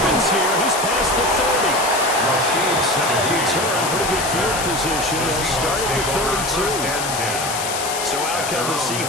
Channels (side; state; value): left; noise; hiss, 5 dB below the sound